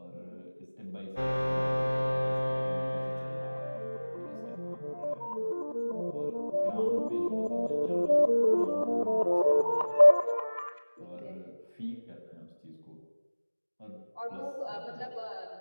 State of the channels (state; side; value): inverted; both; correlation -1.00